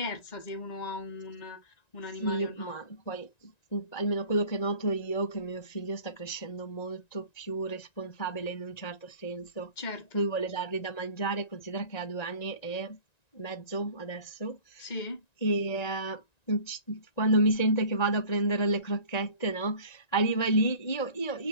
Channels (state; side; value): late; right; 1.9 ms